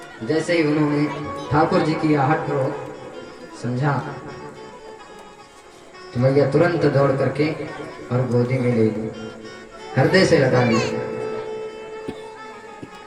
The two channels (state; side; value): identical; both; correlation 1.00